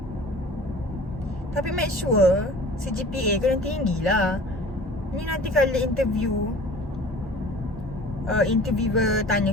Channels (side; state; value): both; normal; correlation 0.44